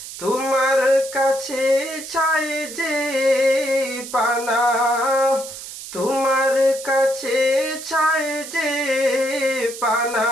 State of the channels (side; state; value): right; noise; hiss, 11 dB below the sound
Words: তোমার কাছে চাই যে পানা, তোমার কাছে চাই যে পানা